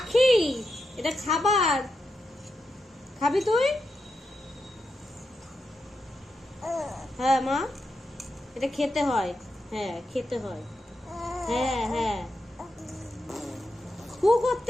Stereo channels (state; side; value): normal; both; correlation 0.86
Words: এটা খাবার, খাবি তুই? হ্যাঁ মা, এটা খেতে হয়, হ্যাঁ খেতে হয়। হ্যাঁ হ্যাঁ, হু